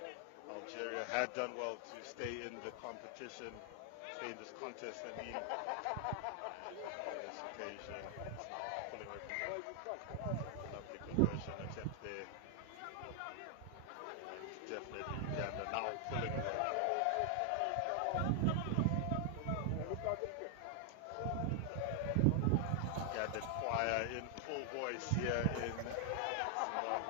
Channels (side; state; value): both; different; correlation 0.00